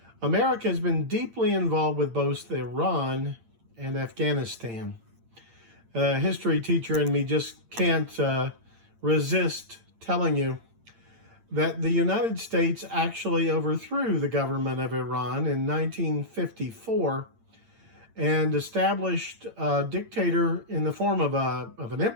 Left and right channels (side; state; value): left; late; 8.8 ms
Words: America has been deeply involved with both Iran and Afghanistan. A history teacher in me just can't resist telling you that the United States actually overthrew the government of Iran in 1954 and established a dictator in the form of an